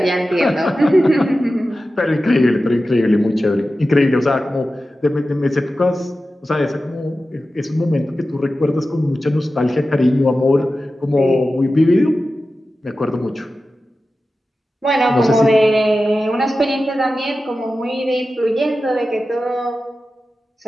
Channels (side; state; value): both; normal; correlation 0.93